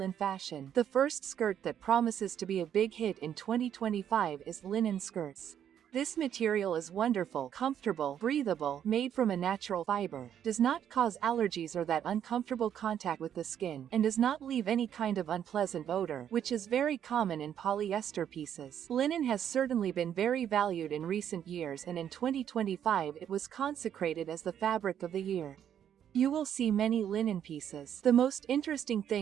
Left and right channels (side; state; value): left; quieter; 9.5 dB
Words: fashion. The first skirt that promises to be a big hit in 2025 is linen skirts. This material is wonderful, comfortable, breathable, made from a natural fiber, does not cause allergies or that uncomfortable contact with the skin, and does not leave any kind of unpleasant odor, which is very common in polyester pieces. Linen has certainly been very valued in recent years, and in 2025 it was consecrated as the fabric of the year. You will see many linen pieces. The most interesting